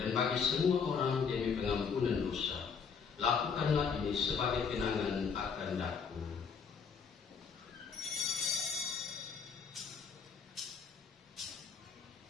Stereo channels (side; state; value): right; quieter; 6.1 dB